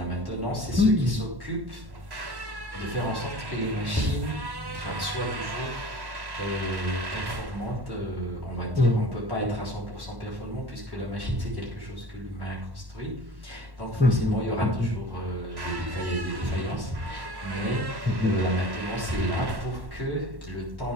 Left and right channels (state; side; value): late; left; 1.1 ms